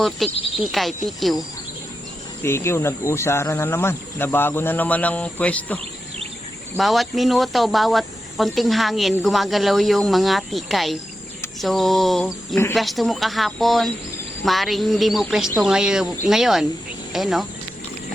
tikay, tikiw. Tikiw, nag-usara na naman. Nabago na naman ang pwesto. Bawat minuto, bawat konting hangin, gumagalaw yung mga tikay. So, yung pwesto mo kahapon, maring hindi mo pwesto ngayon. Eh, no?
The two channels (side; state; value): both; normal; correlation 0.89